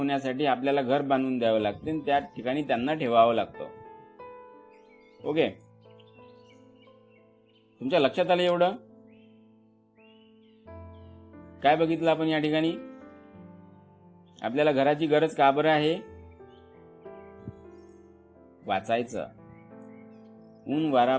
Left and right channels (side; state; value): both; identical; correlation 1.00